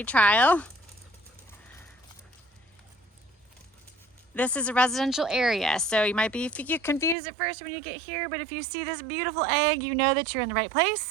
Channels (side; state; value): left; drops out; at 7.2 s